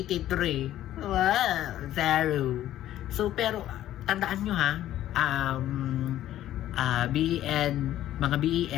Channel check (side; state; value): right; quieter; 12.9 dB